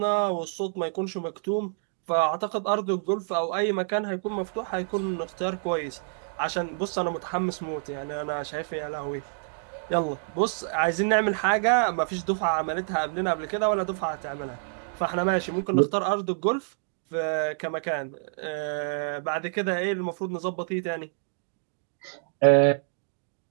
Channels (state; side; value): silent; left; digital silence